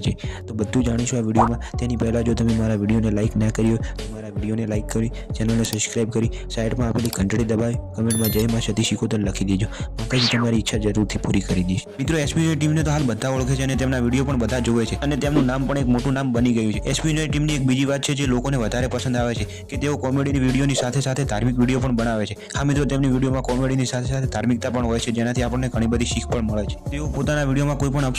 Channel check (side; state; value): both; identical; correlation 1.00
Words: છે। તો બધું જાણીશું આ વિડીયોમાં। તેની પહેલાં જો તમે મારા વિડીયોને લાઇક ના કરી હોય તો મારા વિડીયોને લાઇક કરી, ચેનલને સબસ્ક્રાઇબ કરી, સાઈડમાં આપેલી ઘંટડી દબાવી, કમેન્ટમાં જય માં સતી શિકોતર લખી દેજો। માતાજી તમારી ઈચ્છા જરૂરથી પૂરી કરી દઈશ। મિત્રો, એસપીની ટીમને તો હાલ બધા ઓળખે છે અને તેમના વિડીયો પણ બધા જોવે છે અને તેમનું નામ પણ એક મોટું નામ બની ગયું છે। એસપીની ટીમની એક બીજી વાત છે જે લોકોને વધારે પસંદ આવે છે કે તેઓ કોમેડીની વિડીયોની સાથે સાથે ધાર્મિક વિડીયો પણ બનાવે છે। હા મિત્રો, તેમની વિડીયોમાં કોમેડીની સાથે સાથે ધાર્મિકતા પણ હોય છે, જેનાથી આપણને ઘણી બધી શીખ પણ મળે છે। તેઓ પોતાના વિડીયોમાં કોઈ પણ